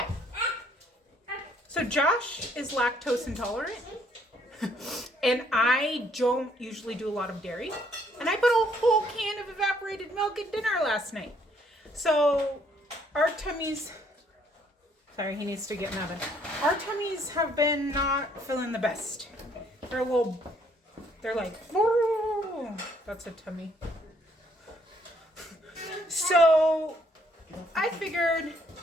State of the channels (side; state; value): both; normal; correlation 0.66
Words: So Josh is lactose intolerant, and I don't usually do a lot of dairy. And I put a whole can of evaporated milk at dinner last night. So our tummies, sorry, he needs to get in the oven. Our tummies have been not feeling the best. They're like, whoa, that's a tummy. So I figured